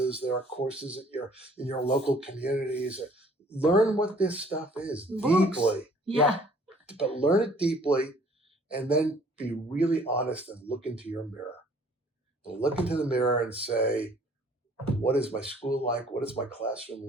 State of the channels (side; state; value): both; normal; correlation 0.57